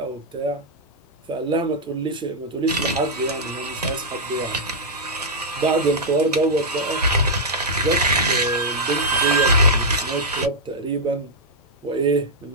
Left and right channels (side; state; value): both; normal; correlation -0.05